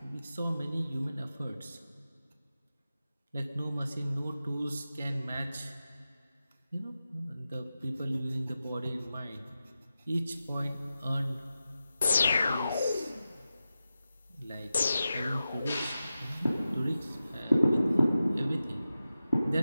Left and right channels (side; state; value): both; inverted; correlation -0.92